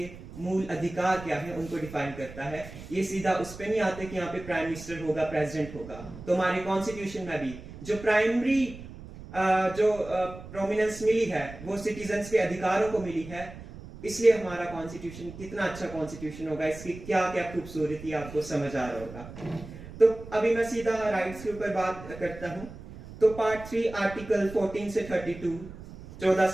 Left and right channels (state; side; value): noise; right; rumble, 14 dB below the sound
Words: मूल अधिकार क्या है उनको डिफाइन करता है। ये सीधा उस पे नहीं आते कि यहाँ पे प्राइम मिनिस्टर होगा, प्रेसिडेंट होगा। तो हमारे कॉन्स्टिट्यूशन में भी जो प्राइमरी जो प्रोमिनेंस मिली है वो सिटीजन्स के अधिकारों को मिली है। इसलिए हमारा कॉन्स्टिट्यूशन कितना अच्छा कॉन्स्टिट्यूशन होगा, इसकी क्या क्या खूबसूरती आपको समझ आ रहा होगा। तो अभी मैं सीधा राइट्स के ऊपर बात करता हूँ। तो पार्ट 3 आर्टिकल 14 से 32, 14